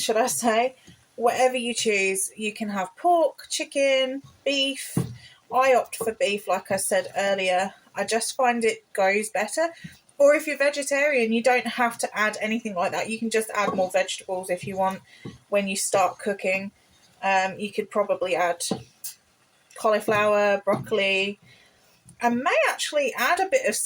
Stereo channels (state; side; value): identical; both; correlation 1.00